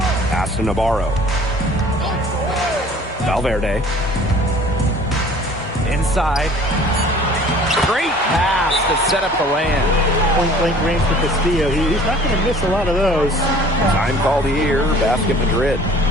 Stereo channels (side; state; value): both; normal; correlation 0.50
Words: Pass to Navarro. Valverde. Inside. Great pass to set up the land. Point-blank range for Castillo. He's not going to miss a lot of those. Time called here, Basket Madrid.